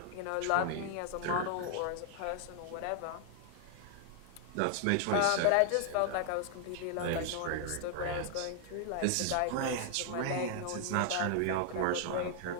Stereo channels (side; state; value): both; different; correlation 0.00